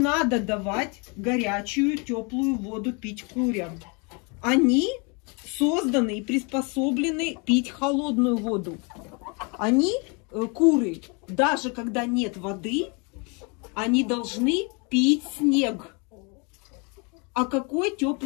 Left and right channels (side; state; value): right; quieter; 32.3 dB